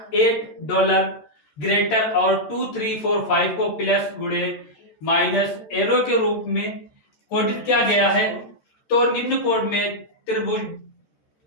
ग्रेटर और 2 3 4 5 को प्लस गुणे माइनस एरो के रूप में कोडित किया गया है। तो निम्न कोड में त्रिभुज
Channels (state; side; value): late; right; 14 ms